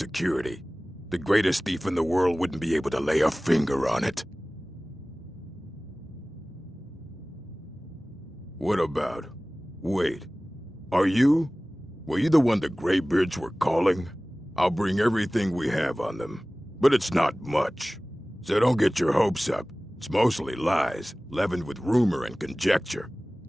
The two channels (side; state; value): both; normal; correlation 0.98